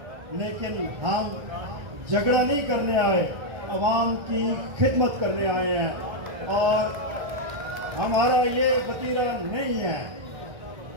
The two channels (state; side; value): late; left; 1.3 ms